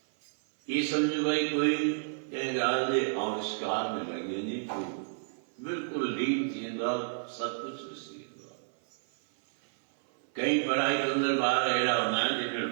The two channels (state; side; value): silent; left; 57 dB below the other